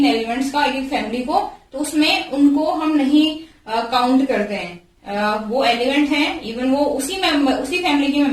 एलिमेंट्स का, एक फैमिली को, तो उसमें उनको हम नहीं काउंट करते हैं। वो एलिमेंट हैं, इवन वो उसी फैमिली के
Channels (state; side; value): identical; both; correlation 1.00